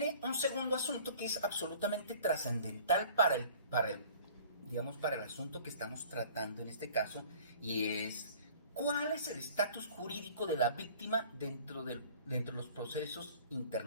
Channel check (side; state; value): both; inverted; correlation -0.49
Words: un segundo asunto que es absolutamente trascendental para el asunto que estamos tratando en este caso, y es cuál es el estatus jurídico de la víctima dentro de los procesos